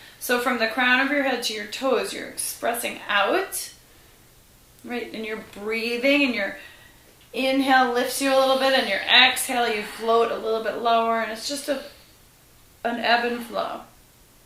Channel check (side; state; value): both; identical; correlation 1.00